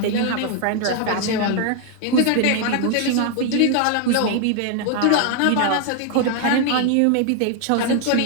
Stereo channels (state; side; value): different; both; correlation 0.00